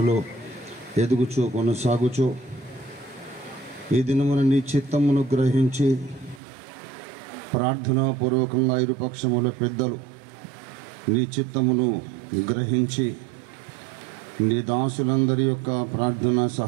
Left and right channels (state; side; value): drops out; left; at 6.4 s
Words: ఎదుగుచూ కొనసాగుచూ ఈ దినమున నీ చిత్తమును గ్రహించి ప్రార్థనాపూర్వకంగా ఇరుపక్షముల పెద్దలు నీ చిత్తమును గ్రహించి నీ దాసులందరి యొక్క ప్రార్థన